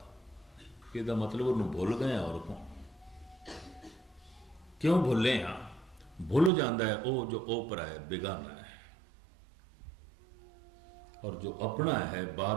इसका मतलब उन्होंने भुल गए और क्यों भुले हाँ? भुल जाता है वो जो ओपरा है, बेगाना है, और जो अपना है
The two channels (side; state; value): left; drops out; at 6.5 s